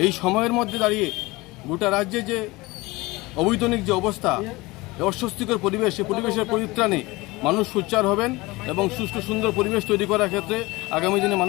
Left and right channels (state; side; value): quieter; right; 21.9 dB